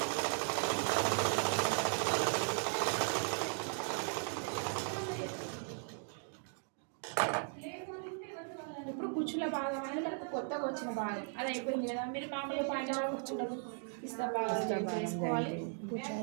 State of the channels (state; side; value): silent; left; 53 dB below the other